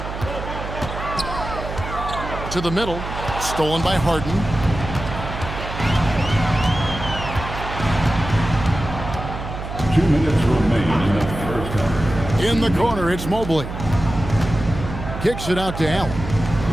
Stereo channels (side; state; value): right; noise; hum, 8 dB below the sound